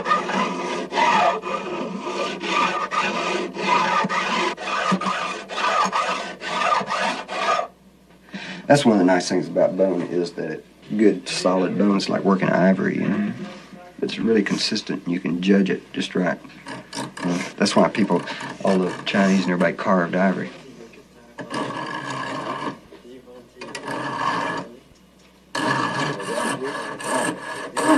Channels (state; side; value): identical; both; correlation 1.00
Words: That's one of the nice things about bone is that it good solid bones like working ivory, you know. It's really consistent and you can judge it just right. You know, that's why people, all the Chinese and everybody carved ivory.